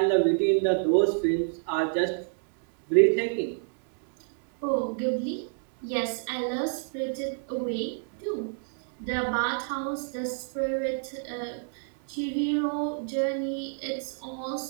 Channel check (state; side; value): silent; left; 59 dB below the other